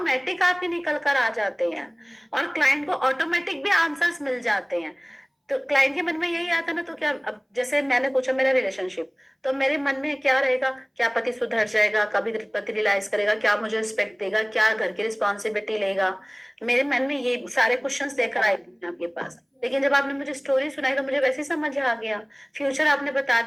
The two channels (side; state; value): both; identical; correlation 1.00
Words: आपके निकल कर आ जाते हैं, और क्लाइंट को ऑटोमेटिक भी आंसर्स मिल जाते हैं। तो क्लाइंट के मन में यही आता ना, तो क्या, अब जैसे मैंने पूछा मेरा रिलेशनशिप, तो मेरे मन में क्या रहेगा, क्या पति सुधर जाएगा, कभी पति रियलाइज करेगा, क्या मुझे रिस्पेक्ट देगा, क्या घर की रिस्पॉन्सिबिलिटी लेगा, मेरे मन में ये सारे क्वेश्चंस लेकर आए थे आपके पास। लेकिन जब आपने मुझे स्टोरी सुनाई तो मुझे वैसे ही समझ आ गया, फ्यूचर आपने बता